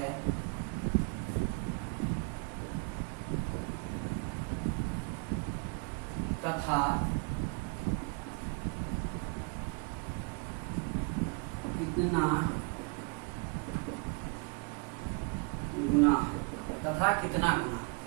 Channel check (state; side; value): quieter; left; 34.2 dB